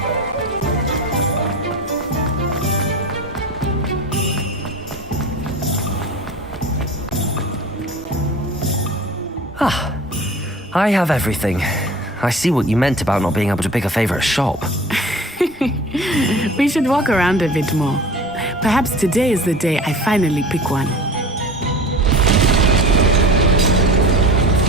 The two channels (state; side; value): normal; both; correlation 0.38